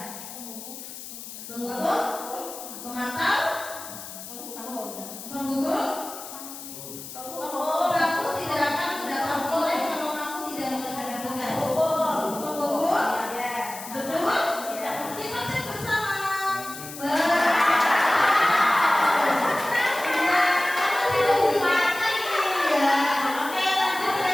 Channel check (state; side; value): noise; left; hiss, 12 dB below the sound